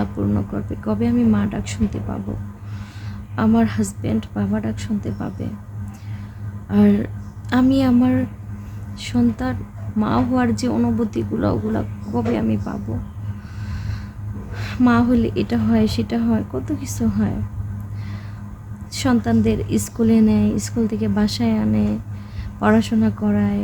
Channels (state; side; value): identical; both; correlation 1.00